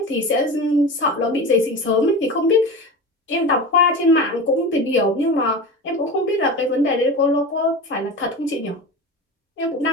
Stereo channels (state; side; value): normal; both; correlation 0.29